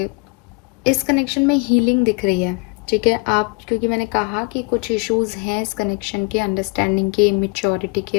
इस कनेक्शन में हीलिंग दिख रही है, ठीक है। आप, क्योंकि मैंने कहा कि कुछ इश्यूज हैं इस कनेक्शन के, अंडरस्टैंडिंग के, इमेच्योरिटी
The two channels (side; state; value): right; quieter; 31.9 dB